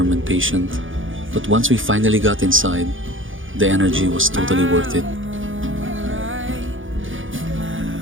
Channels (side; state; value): left; late; 0.57 ms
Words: and patient. But once we finally got inside, the energy was totally worth it.